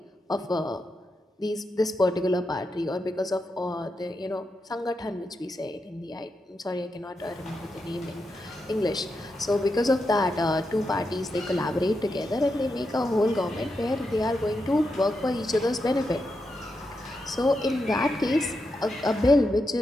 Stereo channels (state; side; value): normal; both; correlation 0.86